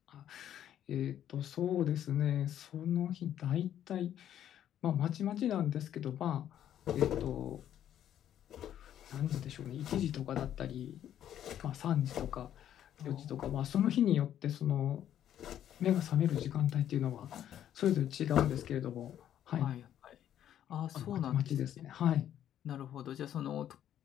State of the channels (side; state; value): right; quieter; 10.8 dB